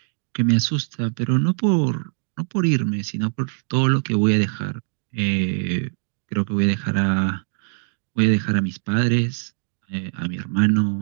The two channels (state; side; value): silent; left; digital silence